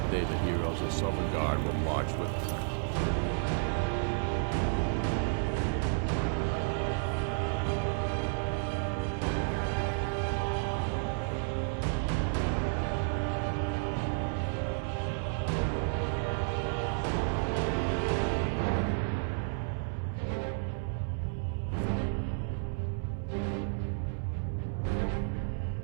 day, the heroes of Sovngarde will march with us.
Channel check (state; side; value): silent; left; 57 dB below the other